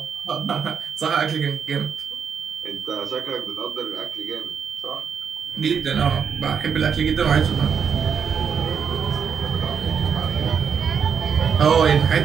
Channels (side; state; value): left; quieter; 7.0 dB